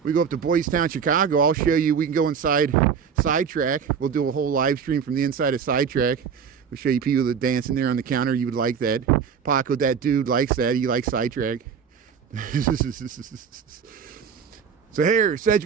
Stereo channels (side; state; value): left; quieter; 6.8 dB